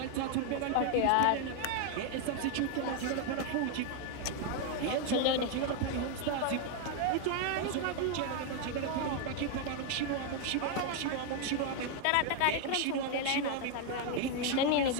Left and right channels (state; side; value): different; both; correlation 0.00